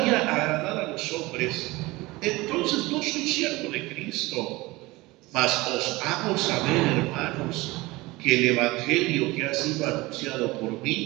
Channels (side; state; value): left; quieter; 21.3 dB